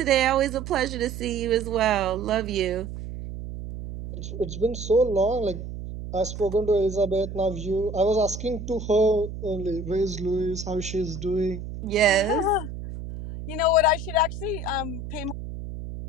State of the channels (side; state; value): right; noise; hum, 9 dB below the sound